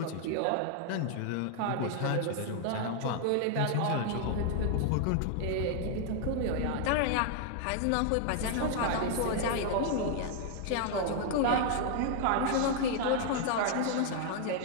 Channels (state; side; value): different; both; correlation 0.00